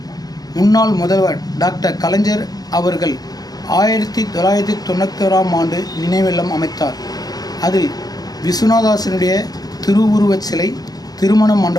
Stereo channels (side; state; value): right; late; 0.19 ms